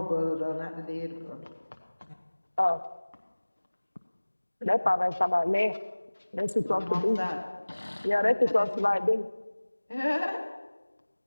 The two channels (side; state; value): both; inverted; correlation -1.00